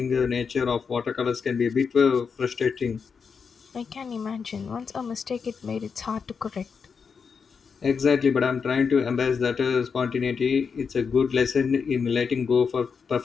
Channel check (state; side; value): quieter; right; 5.9 dB